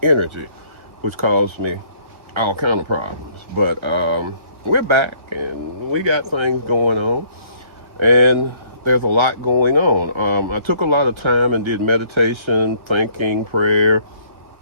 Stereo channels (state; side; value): late; left; 1.5 ms